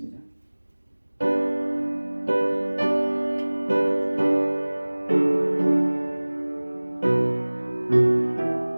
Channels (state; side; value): inverted; both; correlation -1.00